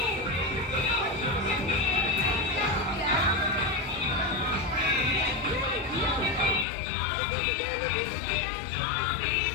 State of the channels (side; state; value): right; drops out; at 6.7 s